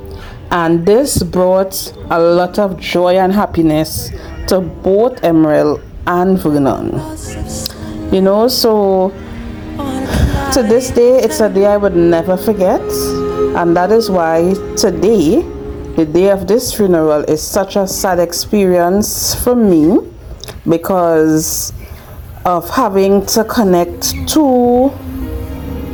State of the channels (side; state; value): both; identical; correlation 1.00